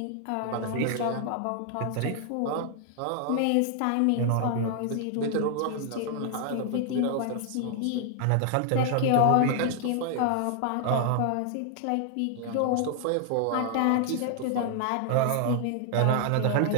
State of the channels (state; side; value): different; both; correlation 0.00